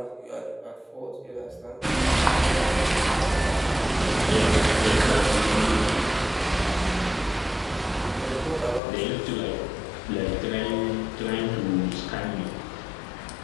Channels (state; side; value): drops out; right; at 8.8 s